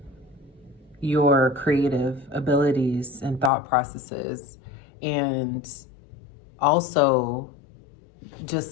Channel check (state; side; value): drops out; right; at 3.5 s